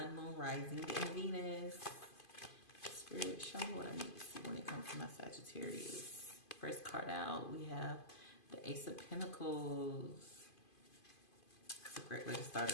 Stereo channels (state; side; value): late; right; 2.5 ms